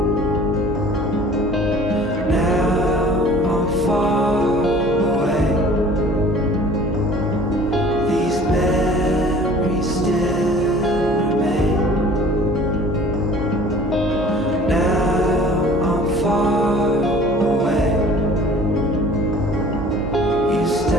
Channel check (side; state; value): right; noise; hum, 10 dB below the sound